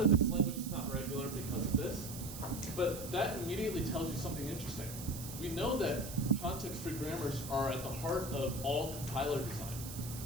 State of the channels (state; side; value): noise; right; hiss, 10 dB below the sound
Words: this language is not regular because of this, but that immediately tells you something interesting. We know that context-free grammars are at the heart of all compiler design.